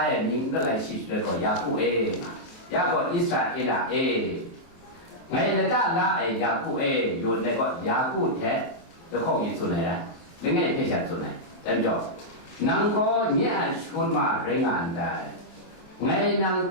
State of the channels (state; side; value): late; right; 23 ms